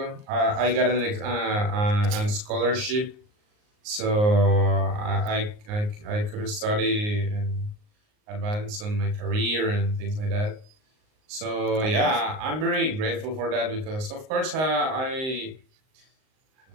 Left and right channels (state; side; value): late; left; 38 ms